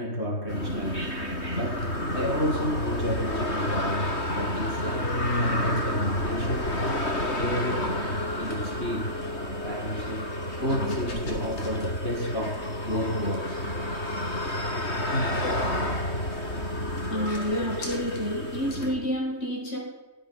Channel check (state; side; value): late; right; 3.2 ms